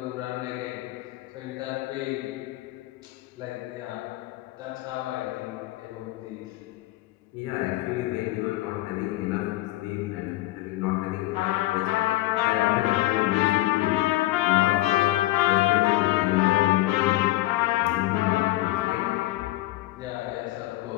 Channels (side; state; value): right; quieter; 17.4 dB